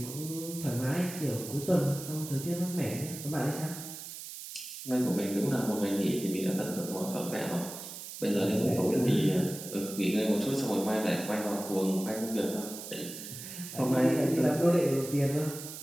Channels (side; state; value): right; noise; hiss, 11 dB below the sound